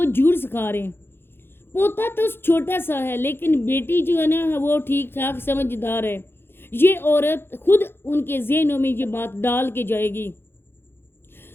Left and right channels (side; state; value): right; late; 0.11 ms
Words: झूठ सिखा रहे हैं। पोता तो छोटा सा है लेकिन बेटी जो है ना वो ठीक ठाक समझदार है। ये औरत खुद उनके ज़हनों में ये बात डाल के जाएगी।